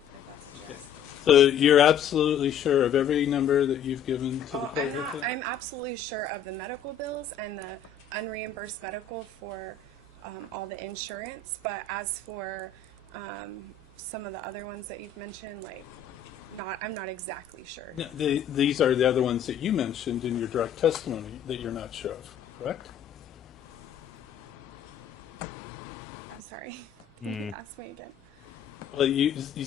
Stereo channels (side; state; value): right; quieter; 7.4 dB